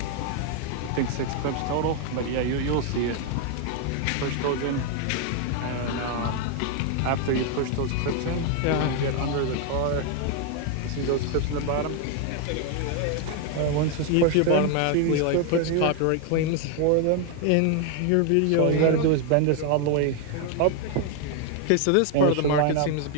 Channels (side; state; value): both; different; correlation 0.00